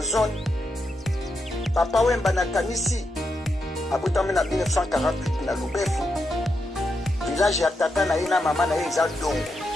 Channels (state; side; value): normal; both; correlation 0.84